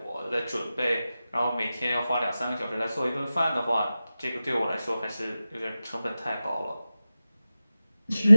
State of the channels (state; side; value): inverted; both; correlation -0.94